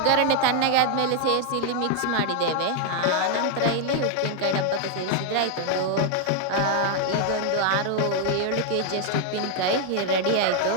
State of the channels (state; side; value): different; both; correlation 0.00